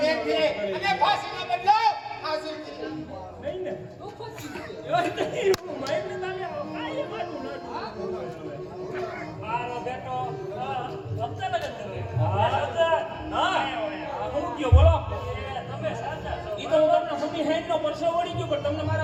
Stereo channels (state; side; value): identical; both; correlation 1.00